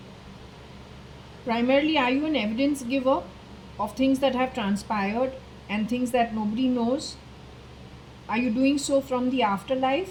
Primarily, are you an evidence giver of things that have transpired and things that nobody knows? Are you doing so from the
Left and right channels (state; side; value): identical; both; correlation 1.00